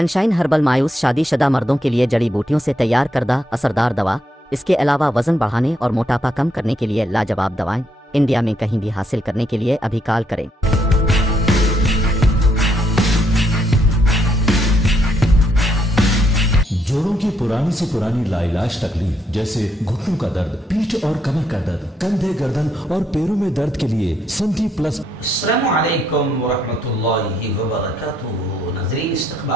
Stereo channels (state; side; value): normal; both; correlation 0.75